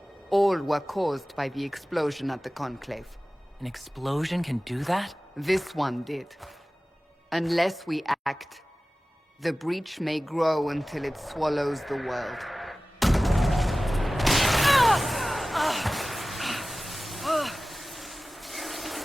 All were caused by the explosion at the Conclave. An explosion can do that? This one did. Unless we act, the Breach may grow until it swallows the world.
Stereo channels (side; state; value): both; normal; correlation 0.97